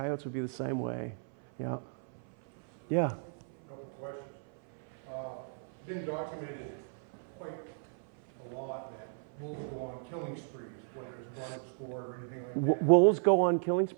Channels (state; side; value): silent; left; 55 dB below the other